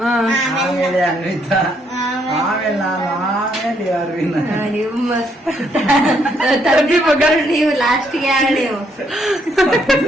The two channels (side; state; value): both; normal; correlation 0.72